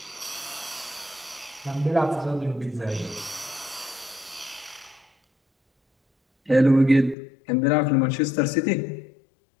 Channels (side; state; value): right; drops out; at 7.2 s